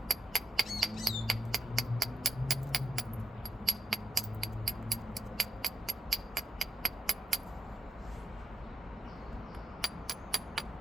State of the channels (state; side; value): normal; both; correlation 0.88